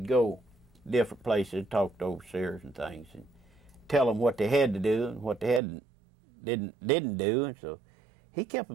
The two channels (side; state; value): left; drops out; at 5.6 s